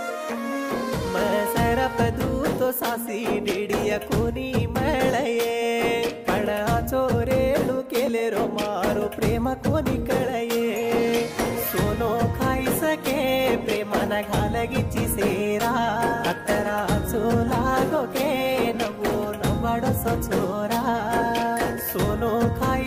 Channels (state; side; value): identical; both; correlation 1.00